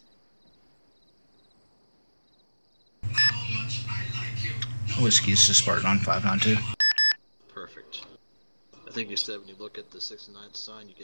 Whiskey, this is Spartan on 592. Perfect. I think you said when you look at the 69 sign,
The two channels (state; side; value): inverted; both; correlation -1.00